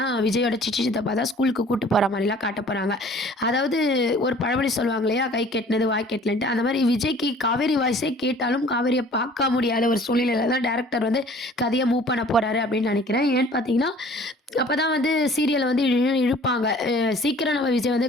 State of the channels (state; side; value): normal; both; correlation 0.50